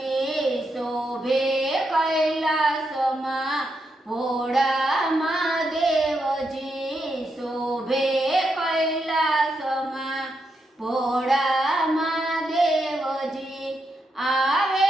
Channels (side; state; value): both; normal; correlation 0.83